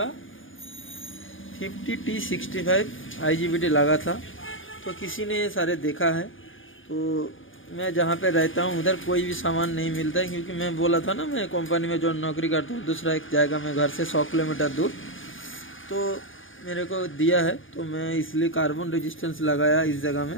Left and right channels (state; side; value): late; right; 0.58 ms